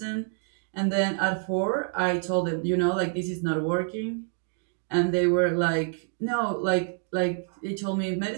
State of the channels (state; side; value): silent; left; 56 dB below the other